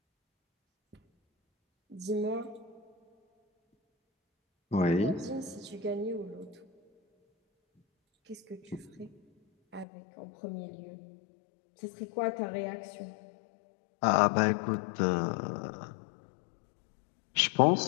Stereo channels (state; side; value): drops out; right; at 9.9 s